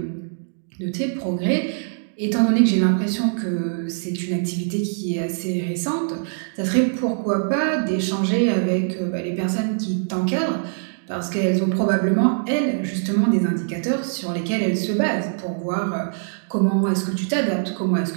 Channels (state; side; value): silent; left; digital silence